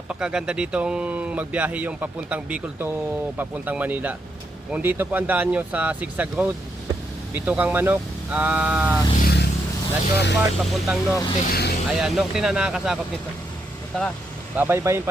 ditong magbiyahe yung papuntang Bicol to papuntang Manila. Kung dito po ang daan nyo sa Zigzag Road, dito kang manok, Natural Park papuntang Norte. Ayan, Norte na nakakasakop nito. So tara, babaybayin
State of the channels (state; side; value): normal; both; correlation 0.80